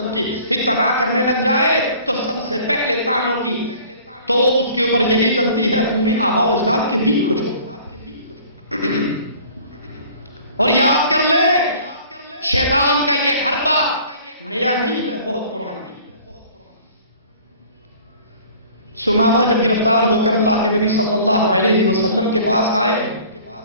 کی اتباع کرنے لگ جائے تو سب سے پہلے طعنوں کی تو اس کے اوپر یہی چلتی ہے، تمہیں آبا و اجداد کے دین کو چھوڑ. اور یاد کر لے شیطان کا یہ حربہ نیا نہیں ہے، بہت پرانا ہے. سمامہ جب گرفتار ہو کر اللہ کے نبی صلی اللہ علیہ وسلم کے پاس آئے،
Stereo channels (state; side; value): inverted; both; correlation -0.49